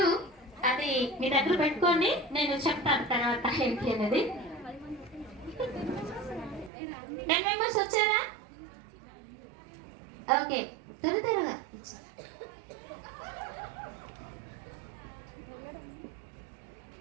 అది మీ దగ్గర పెట్టుకోండి, నేను చెప్తాను తర్వాత ఏంటి అనేది. 10 మెంబర్స్ వచ్చారా? ఓకే, త్వరగా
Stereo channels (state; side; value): drops out; left; at 6.7 s